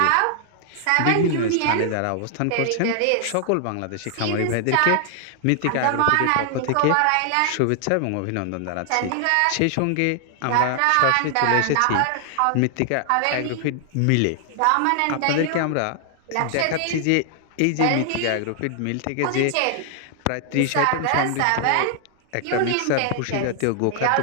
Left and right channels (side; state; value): both; different; correlation 0.00